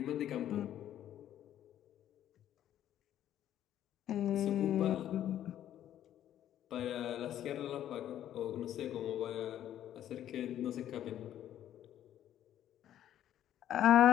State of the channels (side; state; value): right; quieter; 11.4 dB